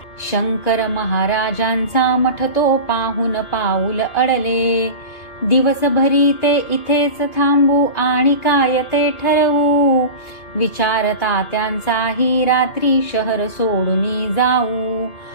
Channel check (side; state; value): right; late; 2.6 ms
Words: शंकर महाराजांचा मठ तो पाहून पाऊल अडले. दिवसभरी ते इथेच थांबू आणि काय ते ठरवू, विचार तात्यांचाही रात्री शहर सोडून जाऊ.